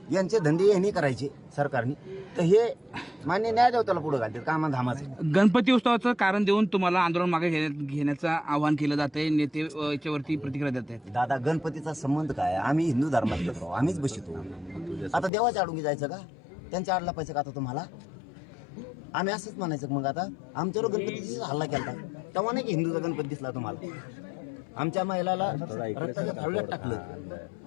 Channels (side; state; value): right; drops out; at 15.3 s